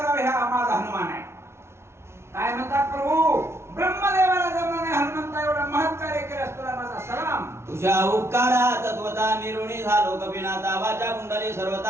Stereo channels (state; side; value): late; left; 0.13 ms